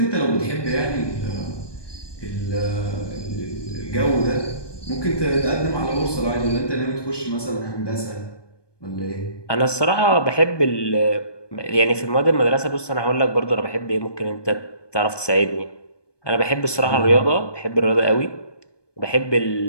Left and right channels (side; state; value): right; late; 1.2 ms